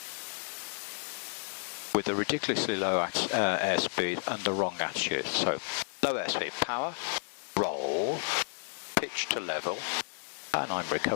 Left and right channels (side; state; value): right; silent; digital silence